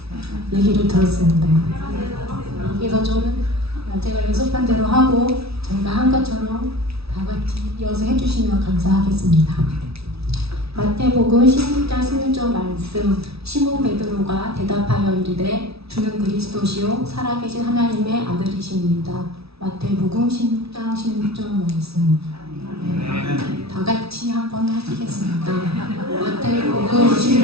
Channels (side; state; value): left; late; 0.77 ms